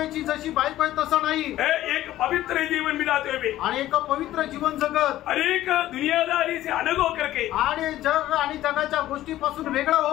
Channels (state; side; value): quieter; right; 14.3 dB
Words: जशी बायको आहे तसं नाही। एक पवित्र जीवन बिताते हुए, आणि एक पवित्र जीवन जगत, अनेक दुनियादारी से अलग होकर के, आणि जग आणि जगाच्या गोष्टीपासून वेगळं